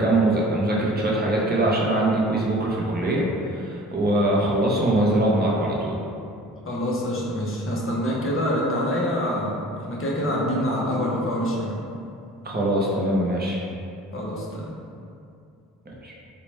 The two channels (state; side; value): normal; both; correlation 0.46